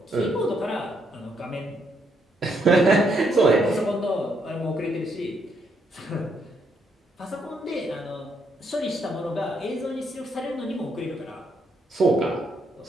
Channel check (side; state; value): both; normal; correlation 0.75